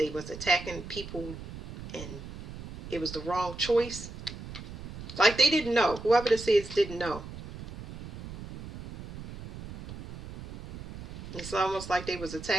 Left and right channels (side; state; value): right; noise; rumble, 12 dB below the sound